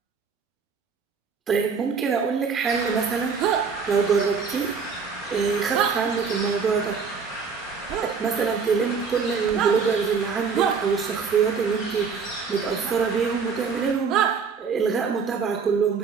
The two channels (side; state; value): left; quieter; 5.7 dB